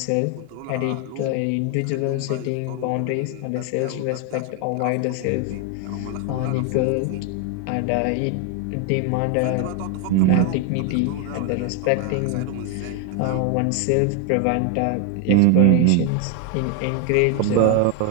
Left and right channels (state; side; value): different; both; correlation 0.01